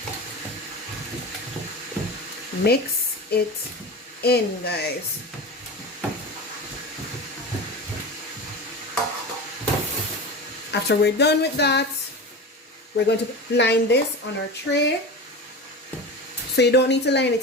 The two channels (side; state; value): both; normal; correlation 0.28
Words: Mix it in, guys. After we're done with that, we're going to line this on our tray. So you don't need to line